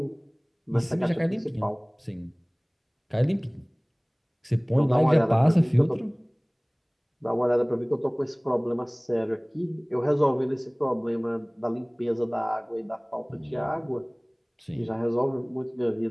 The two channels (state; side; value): identical; both; correlation 1.00